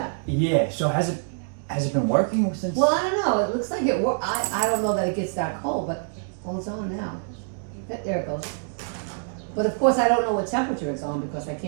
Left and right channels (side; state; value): left; silent; digital silence